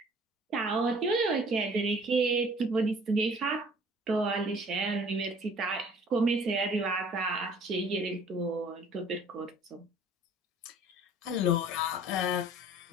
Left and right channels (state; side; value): normal; both; correlation 0.52